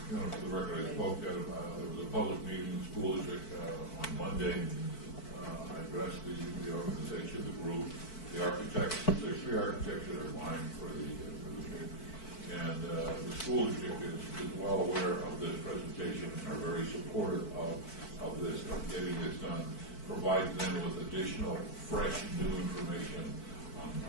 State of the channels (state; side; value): late; right; 4.5 ms